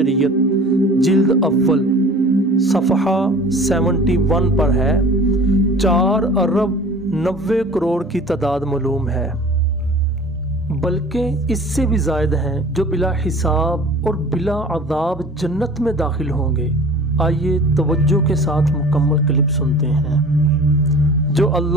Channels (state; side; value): normal; both; correlation 0.43